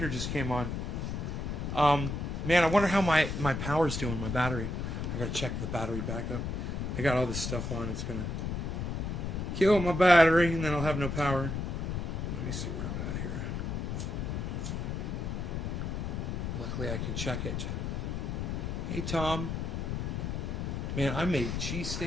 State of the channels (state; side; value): noise; left; rumble, 2 dB below the sound